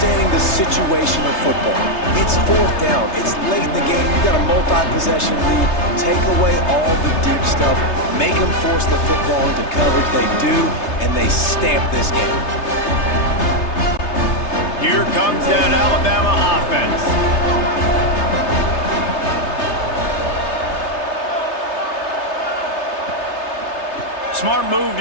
the situation of football. It's 4th down. It's late in the game. You got a multi-possession lead. Take away all the deep stuff. Make them force the football into coverage. They do, and they stamp this game. Here comes that Alabama offense. Smart move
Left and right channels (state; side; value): late; right; 3.3 ms